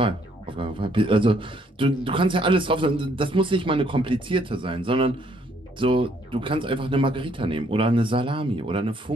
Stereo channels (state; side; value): normal; both; correlation 0.67